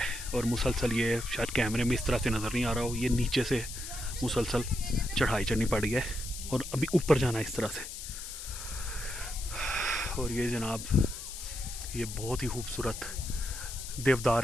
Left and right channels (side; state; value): left; noise; hiss, 9 dB below the sound